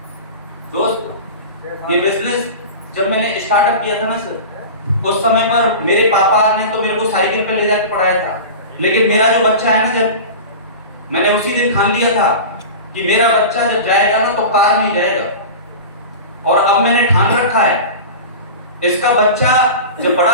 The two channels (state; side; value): inverted; both; correlation -0.31